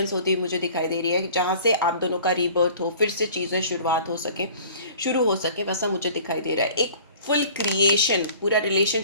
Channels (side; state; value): both; inverted; correlation -0.47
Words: होती हुई मुझे दिखाई दे रही है, जहाँ से आप दोनों का रीबर्थ हो, फिर से चीज़ें शुरुआत हो सके, शुरू हो सके, वैसा मुझे दिखाई दे रहा है। एक फुल क्रिएशन, पूरा